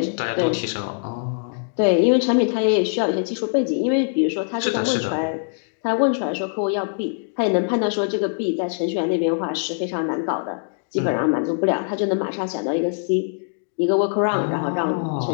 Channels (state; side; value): silent; right; digital silence